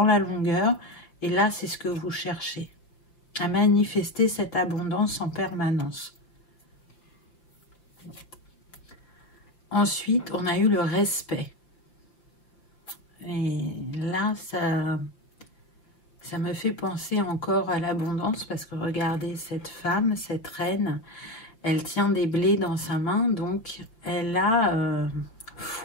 la longueur, et là c'est ce que vous cherchez, à manifester cette abondance en permanence. Ensuite, on a eu le respect. Et là, ça me fait penser encore à l'abondance parce que regardez cette femme, cette reine, elle tient des blés dans sa main, donc elle a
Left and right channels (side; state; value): right; late; 5.6 ms